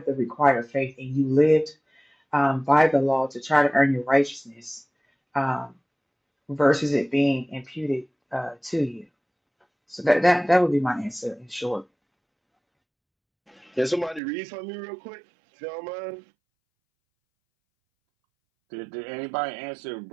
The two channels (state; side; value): drops out; left; at 14.2 s